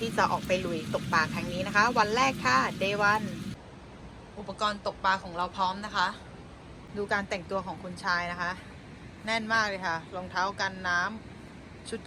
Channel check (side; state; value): both; identical; correlation 1.00